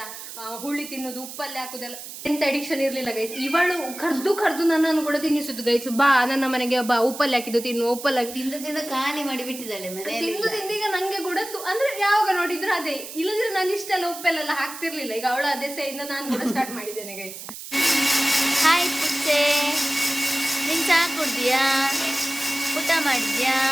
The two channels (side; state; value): right; noise; hiss, 12 dB below the sound